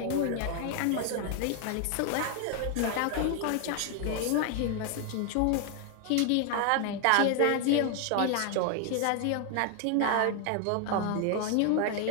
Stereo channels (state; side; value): different; both; correlation 0.01